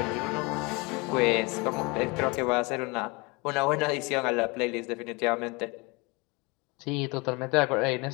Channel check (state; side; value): quieter; right; 27.2 dB